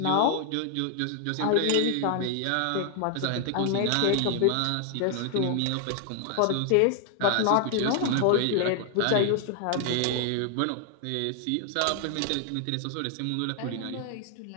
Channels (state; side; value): different; both; correlation 0.00